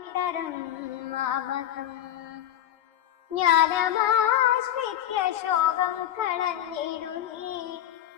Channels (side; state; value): right; quieter; 11.6 dB